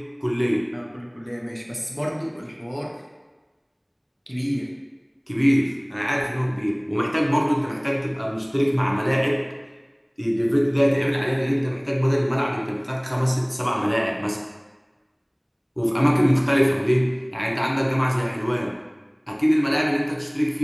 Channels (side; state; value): both; identical; correlation 1.00